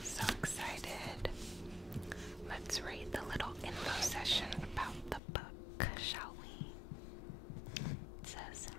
So excited. Let's read the little info session about the book, shall we? It says,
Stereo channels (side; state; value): right; drops out; at 5.2 s